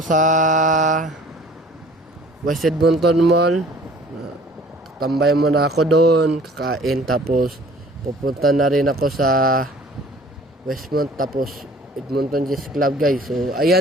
West Edmonton Mall. Tambay muna ako doon, kakain. Tapos, pupunta na rin ako sa Westmont, tapos Edmonton Chess Club guys. So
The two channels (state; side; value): normal; both; correlation 0.51